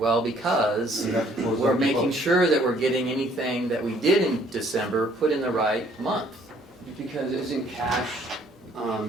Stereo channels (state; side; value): normal; both; correlation 0.61